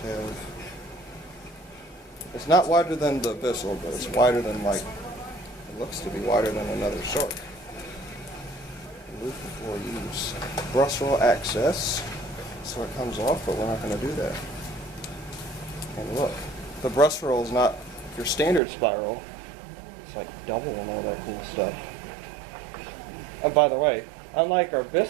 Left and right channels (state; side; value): drops out; left; at 18.6 s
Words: have? It's not wider than the Bissell, but it's wider than, like, it looks to be wider than another Shark. Remove before use. Brush roll access, so it comes off, but we're not going to do that. And look, the brush roll is not your standard spiral. It's like double and all that cool stuff. And by the way, unlike our